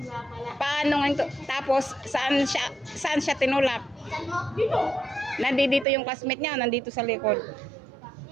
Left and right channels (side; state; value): left; drops out; at 5.9 s